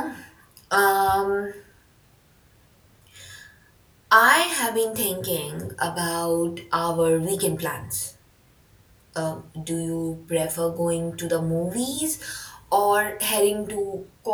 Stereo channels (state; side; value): identical; both; correlation 1.00